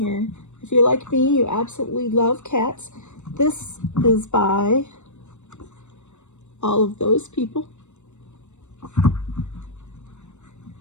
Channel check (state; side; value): late; right; 0.83 ms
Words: If you're like me, you absolutely love cats. This is by all of those people.